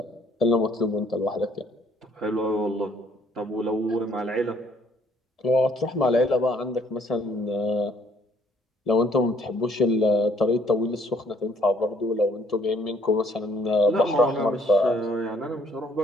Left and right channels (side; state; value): both; normal; correlation 0.64